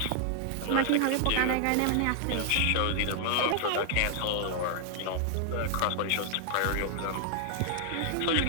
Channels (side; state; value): both; different; correlation 0.00